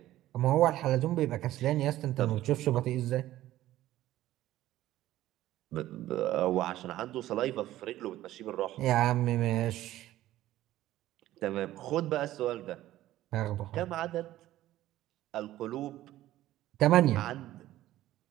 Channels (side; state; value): left; quieter; 14.6 dB